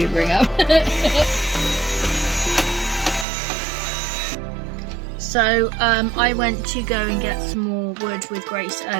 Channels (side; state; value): left; drops out; at 3.2 s